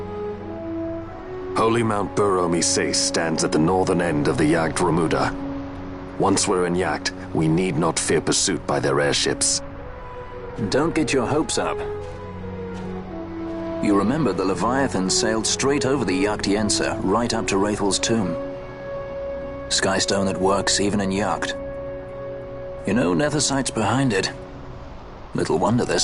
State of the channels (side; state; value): both; identical; correlation 1.00